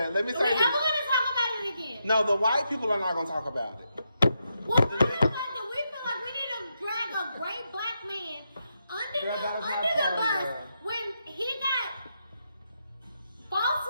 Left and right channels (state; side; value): inverted; both; correlation -0.83